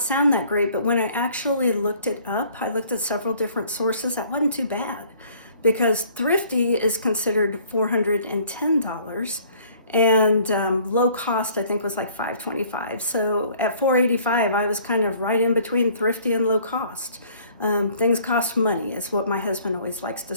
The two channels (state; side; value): inverted; both; correlation -0.56